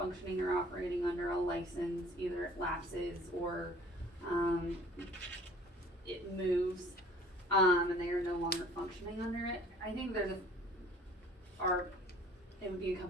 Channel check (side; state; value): both; normal; correlation 0.51